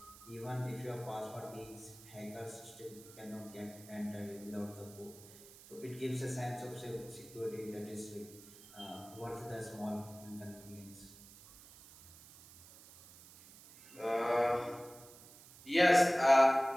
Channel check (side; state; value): right; noise; hiss, 20 dB below the sound